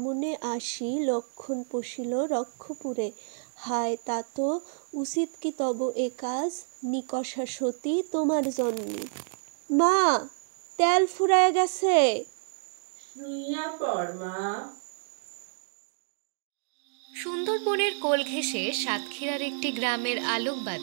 আসি লক্ষণ পশিল রক্ষপুরে। হায় তাত উচিত কি তব এ কাজ নিকষা সতী তোমার জন্মে। মা, তেল ফুরায় গেছে। সুন্দরবনের কোল ঘেঁষে সাতক্ষীরার একটি গ্রামের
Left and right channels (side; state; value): left; silent; digital silence